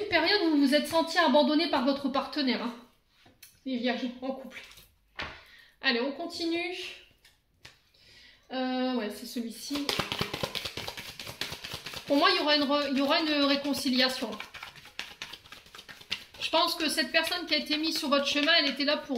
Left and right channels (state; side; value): identical; both; correlation 1.00